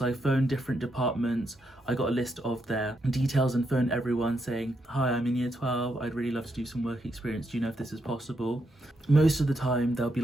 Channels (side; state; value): both; normal; correlation 0.80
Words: I phoned different departments, I got a list of their details and phoned everyone saying, hi, I'm in year 12, I'd really love to do some work experience, do you know if this is possible? Most of the time they'll be